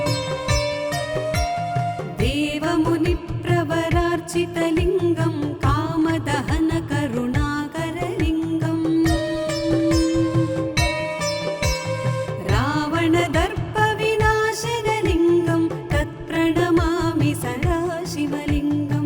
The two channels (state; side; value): identical; both; correlation 1.00